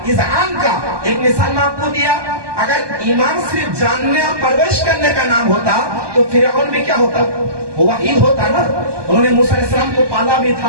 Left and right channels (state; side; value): late; left; 1.2 ms